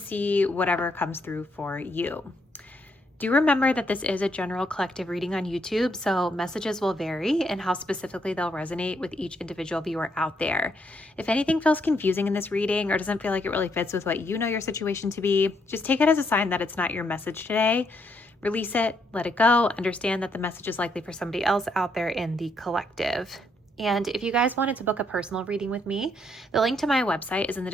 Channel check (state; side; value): normal; both; correlation 0.74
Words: whatever comes through for you. Do remember that this is a general collective reading on YouTube, so messages will vary and how specifically they'll resonate with each individual viewer out there. If anything feels confusing in this reading or doesn't feel like it really fits with what you know your situation to be, just take it as a sign that it's not your message today. Release it, let it go, understand that the message is likely for somebody else out there in the collective. And if you guys wanted to book a personal reading with me, the link to my website is in the